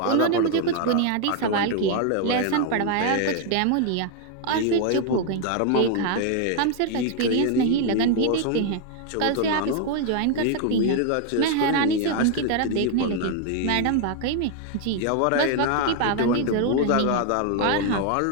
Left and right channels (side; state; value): both; different; correlation 0.00